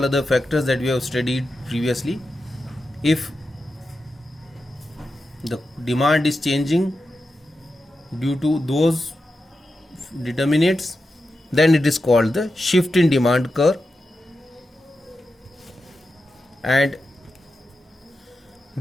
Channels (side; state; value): both; normal; correlation 0.90